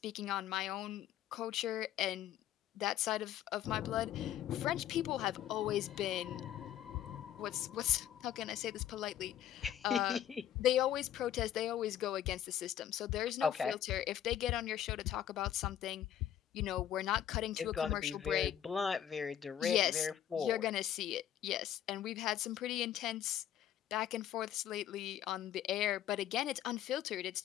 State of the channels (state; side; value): quieter; right; 10.9 dB